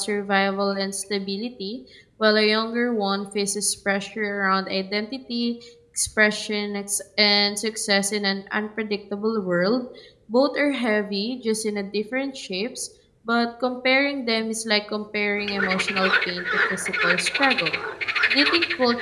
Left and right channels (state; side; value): identical; both; correlation 1.00